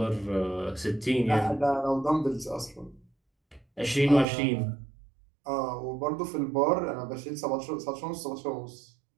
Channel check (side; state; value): left; drops out; at 4.2 s